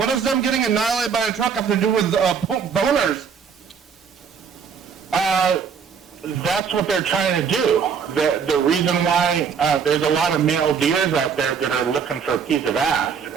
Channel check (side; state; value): left; quieter; 6.6 dB